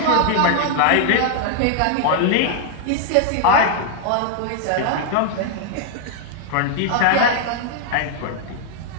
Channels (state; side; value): different; both; correlation 0.00